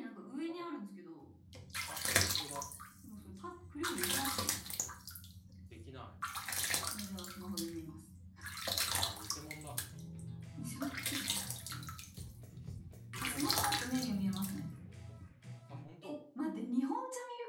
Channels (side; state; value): both; identical; correlation 1.00